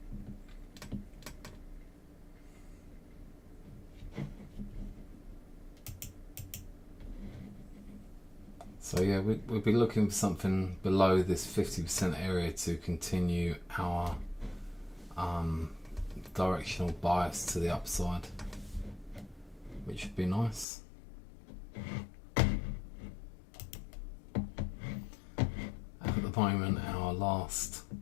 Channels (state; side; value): drops out; right; at 20.7 s